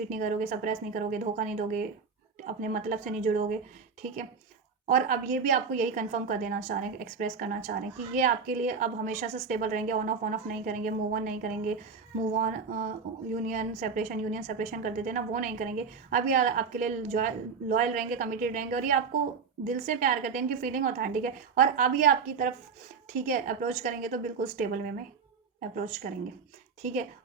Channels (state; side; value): quieter; left; 5.4 dB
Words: नहीं करोगे, सप्रेस नहीं करोगे, धोखा नहीं दोगे, अपने मतलब से नहीं जुड़ोगे, ठीक है। और अब ये भी आपको यही कंफर्म कर देना चाह रहे हैं, एक्सप्रेस करना चाह रहे हैं कि ये आपके लिए अब हमेशा से स्टेबल रहेंगे, ऑन ऑफ नहीं करेंगे, मूव ऑन नहीं करेंगे, मूव ऑन यूनियन सेपरेशन कर देते हैं ना, वो नहीं करेंगे। अब ये आपके लिए लॉयल रहेंगे, कमिटेड रहेंगे, और ये आपको दिल से प्यार करते हैं, इनकी फीलिंग ऑथेंटिक है। और अब ये आपकी तरफ, ठीक है, अप्रोच करेंगे तो बिल्कुल स्टेबल वे में अप्रोच करेंगे, ठीक है।